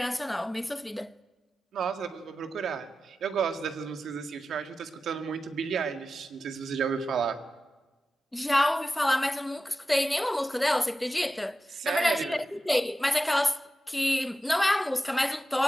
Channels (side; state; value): both; normal; correlation 0.93